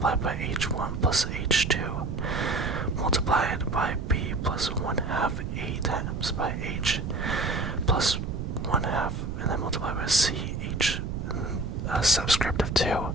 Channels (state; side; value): noise; right; rumble, 4 dB below the sound